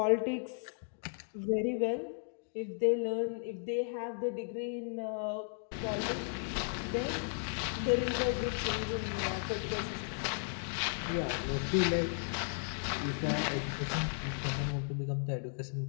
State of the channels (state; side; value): silent; right; digital silence